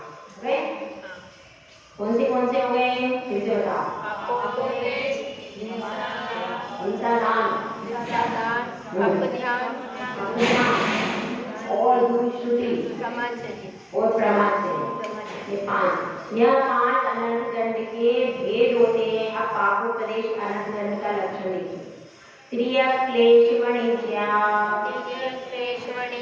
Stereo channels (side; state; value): both; identical; correlation 1.00